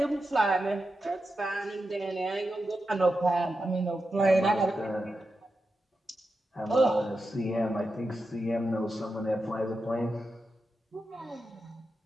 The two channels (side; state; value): both; normal; correlation 0.89